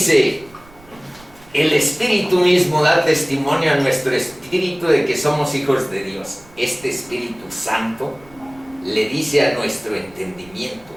el Espíritu mismo da testimonio a nuestro espíritu de que somos hijos de Dios. Este Espíritu Santo le dice a nuestro entendimiento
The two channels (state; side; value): noise; right; rumble, 25 dB below the sound